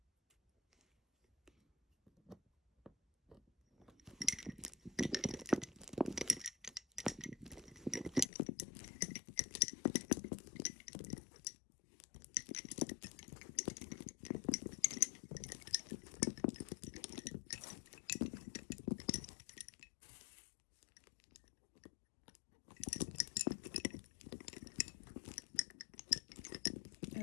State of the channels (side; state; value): right; drops out; at 8.3 s